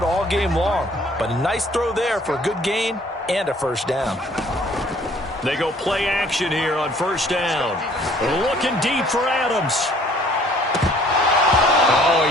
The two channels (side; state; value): both; normal; correlation 0.57